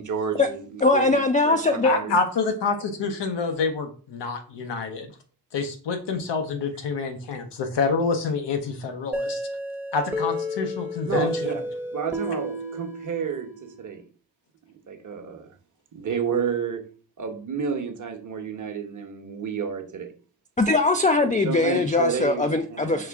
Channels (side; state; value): both; normal; correlation 0.11